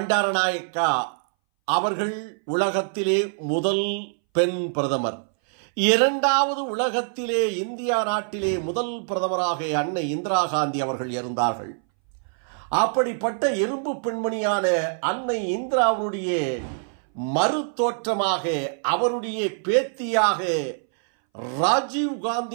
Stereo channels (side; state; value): left; silent; 61 dB below the other